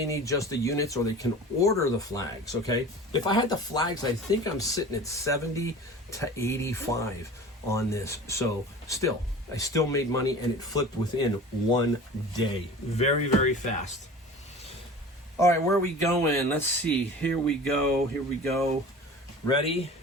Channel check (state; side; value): normal; both; correlation 0.39